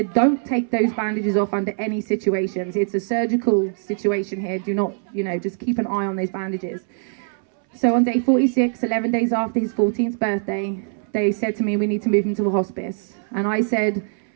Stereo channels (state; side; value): silent; left; 64 dB below the other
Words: don't take those bandages off under any situations. It's a surgical situation here. Do not, you know, just keep an eye on those bandages. So on day 46, 11 days after his 14th birthday, they said to me, we need to move him to a hospice. And I said,